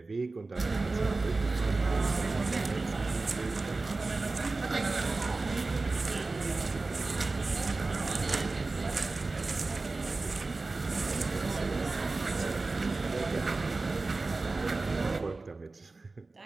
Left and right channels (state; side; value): quieter; left; 3.5 dB